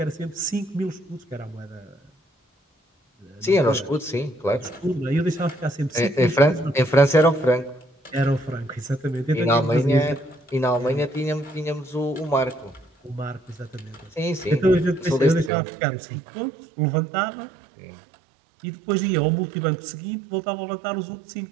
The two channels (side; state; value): left; drops out; at 15.5 s